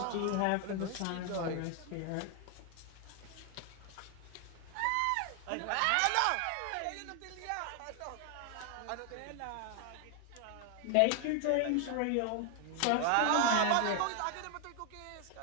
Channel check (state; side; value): different; both; correlation 0.01